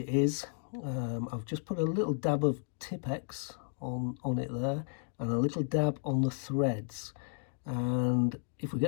is, I've just put a little dab of Tipex on it there, and a little dab on the threads, and if we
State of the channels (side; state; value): right; silent; digital silence